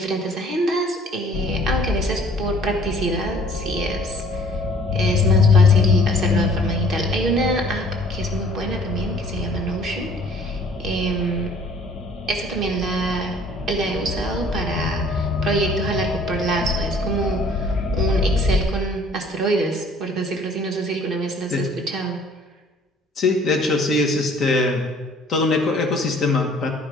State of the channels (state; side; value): normal; both; correlation 0.55